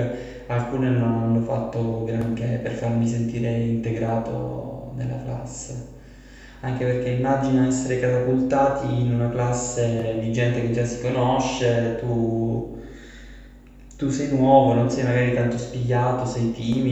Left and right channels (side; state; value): both; identical; correlation 1.00